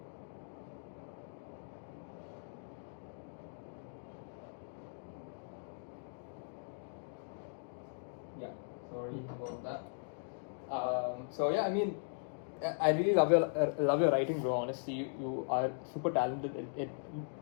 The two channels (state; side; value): silent; right; digital silence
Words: Yeah, sorry about that. So yeah, I mean, I really love your writing, bro. Honestly, you are super talented.